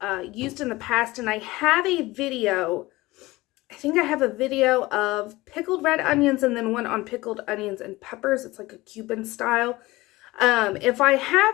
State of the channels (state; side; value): quieter; right; 19.9 dB